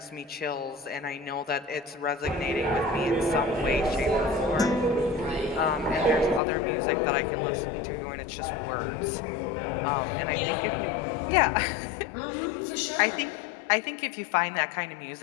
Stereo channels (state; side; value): drops out; right; at 6.4 s